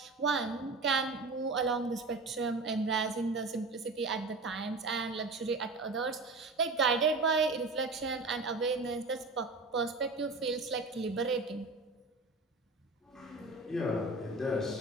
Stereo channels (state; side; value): quieter; left; 3.4 dB